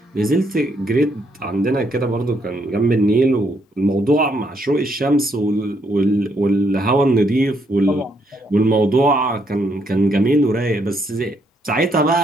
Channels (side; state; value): both; normal; correlation 0.74